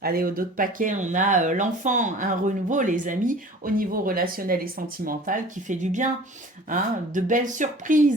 Allez, au dos de paquet, on a l'enfant, un renouveau, les amis, au niveau relationnel et sentimental, qui fait du bien, hein, de belles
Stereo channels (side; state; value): both; normal; correlation 0.44